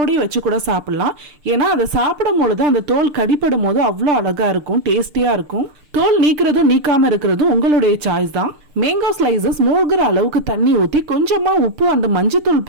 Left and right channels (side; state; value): left; late; 6.7 ms